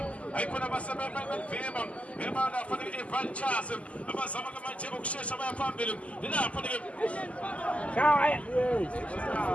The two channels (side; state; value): right; late; 0.065 ms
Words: ayikhona abasebenza belivimba lapha ke iVultures abazama manje ukushesha baya phambili lapha ke